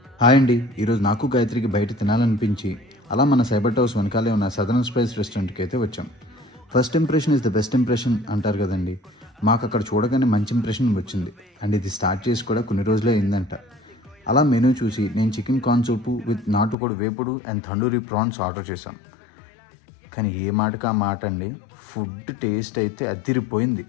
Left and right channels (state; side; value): drops out; right; at 16.8 s